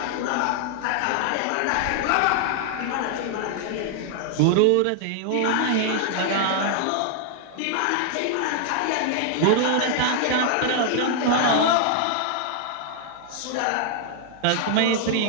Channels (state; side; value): different; both; correlation 0.00